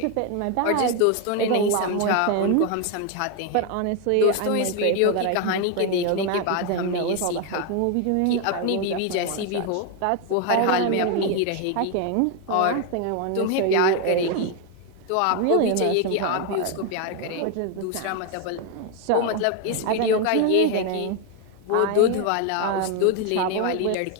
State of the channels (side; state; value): both; different; correlation 0.01